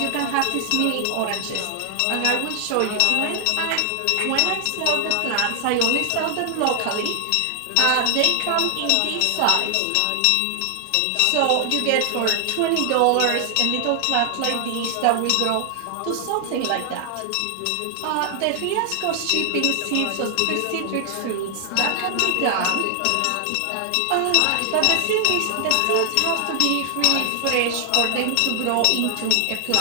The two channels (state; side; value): different; both; correlation 0.00